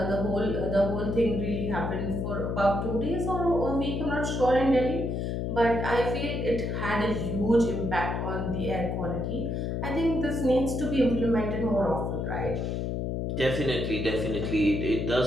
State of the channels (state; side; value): noise; left; hum, 1 dB below the sound